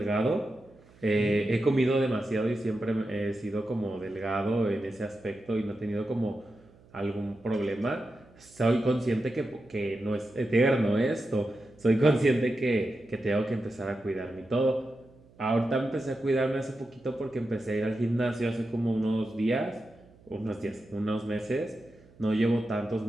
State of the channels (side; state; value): right; noise; hum, 27 dB below the sound